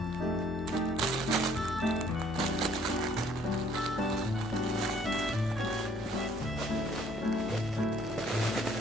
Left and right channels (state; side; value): normal; both; correlation 0.61